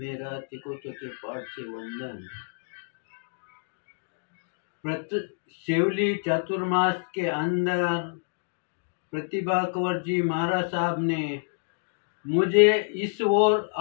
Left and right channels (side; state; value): right; silent; digital silence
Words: तिकोतों के पाठ से वंदन। सेवली चातुर्मास के अंदर प्रतिभा कंवर जी महाराज साहब ने मुझे इस ओर